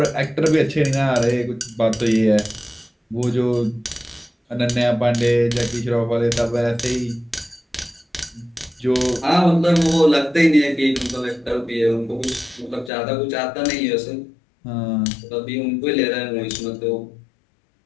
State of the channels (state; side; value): drops out; right; at 12.9 s